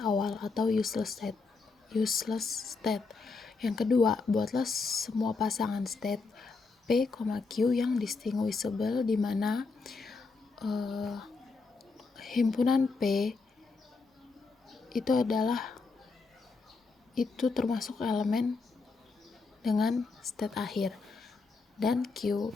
awal atau useless state. Yang kedua, buatlah semua pasangan state P, Q yang distinguishable, di mana himpunan P itu termasuk elemen dengan state akhir, dan Q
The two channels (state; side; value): quieter; right; 4.3 dB